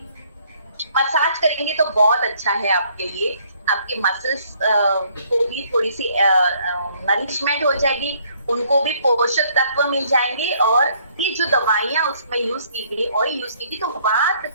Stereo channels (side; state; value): both; inverted; correlation -0.64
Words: मसाज करेंगे, तो बहुत अच्छा है आपके लिए। आपके मसल्स को भी थोड़ी सी नरिशमेंट हो जाएगी, उनको भी पोषक तत्व मिल जाएंगे, और ये जो दवाइयां उसमें यूज की गई, ऑयल यूज की गई, तो वात